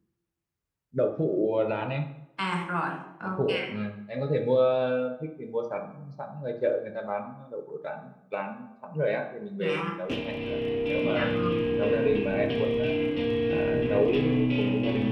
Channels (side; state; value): both; identical; correlation 1.00